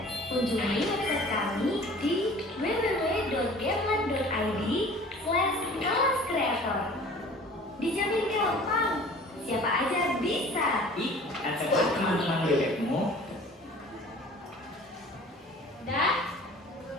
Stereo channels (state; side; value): normal; both; correlation 0.46